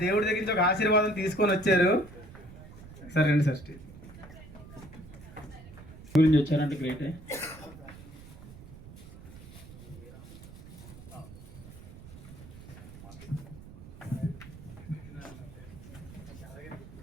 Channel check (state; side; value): noise; right; rumble, 16 dB below the sound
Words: దేవుడి దగ్గర నుంచి ఒక ఆశీర్వాదం తీసుకొని వచ్చారు. సరే రండి సార్, స్టేజ్ గురించి వచ్చారంటే గ్రేటే.